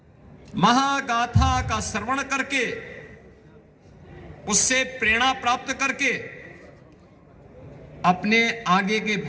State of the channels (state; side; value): identical; both; correlation 1.00